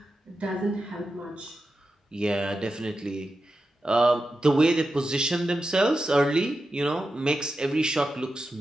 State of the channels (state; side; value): normal; both; correlation 0.90